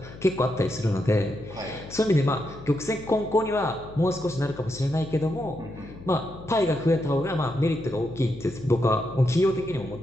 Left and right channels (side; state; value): left; noise; hum, 16 dB below the sound